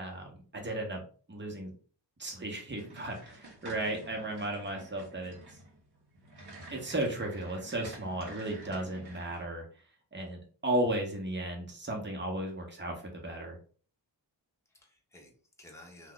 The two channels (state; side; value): normal; both; correlation 0.12